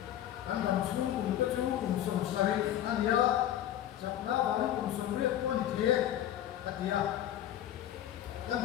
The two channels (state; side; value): quieter; right; 11.7 dB